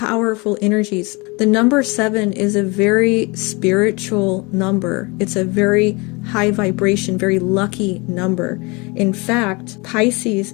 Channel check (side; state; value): right; quieter; 27.2 dB